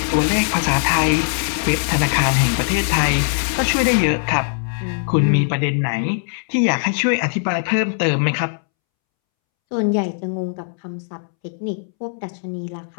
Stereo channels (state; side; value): silent; right; 66 dB below the other